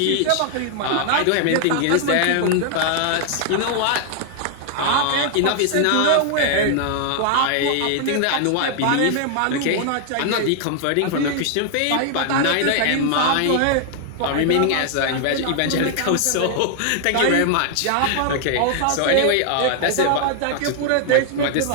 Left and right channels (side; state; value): both; different; correlation 0.00